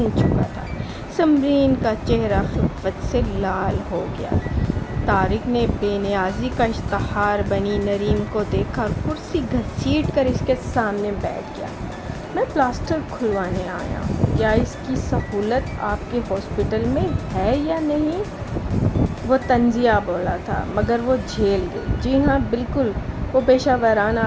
چکا تھا۔ سمرین کا چہرہ خفت سے لال ہو گیا۔ طارق نے بے نیازی کا اشتہار بنی نریم کو دیکھا، کرسی گھسیٹ کر اس کے سامنے بیٹھ گیا۔ میں پلاسٹر کھلوانے آیا ہوں۔ کیا اس کی سہولت آپ کے ہاسپٹل میں ہے یا نہیں؟ وہ طنزیہ بولا تھا، مگر وہ جھیل گئی۔ جی ہاں، بالکل، وہ پیشہ ورانہ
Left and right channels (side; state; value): both; identical; correlation 1.00